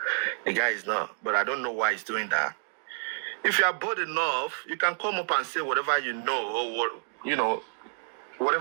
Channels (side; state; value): left; silent; digital silence